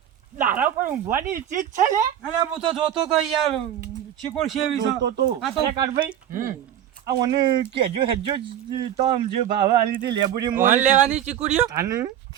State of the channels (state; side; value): quieter; left; 10.7 dB